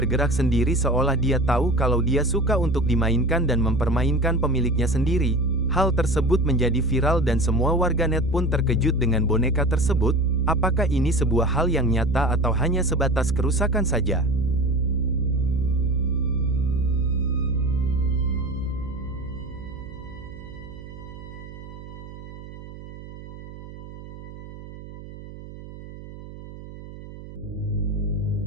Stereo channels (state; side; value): noise; right; hum, 14 dB below the sound